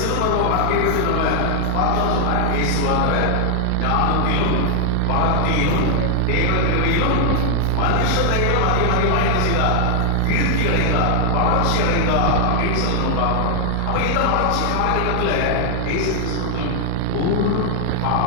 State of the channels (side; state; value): both; different; correlation 0.00